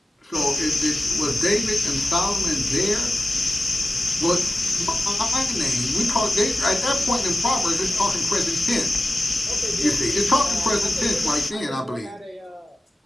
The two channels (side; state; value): both; normal; correlation 0.96